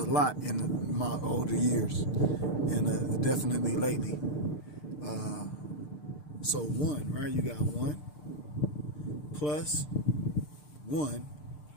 lot in my older years, and definitely lately. Uh, so one, right? You got one plus one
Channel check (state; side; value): late; right; 6.7 ms